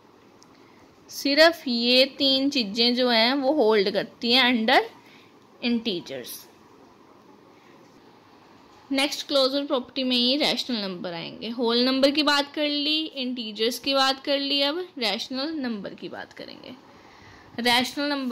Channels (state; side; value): identical; both; correlation 1.00